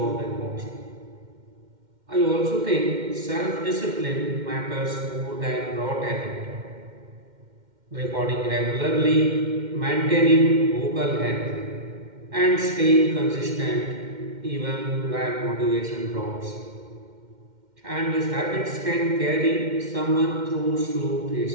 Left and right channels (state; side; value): late; left; 2.1 ms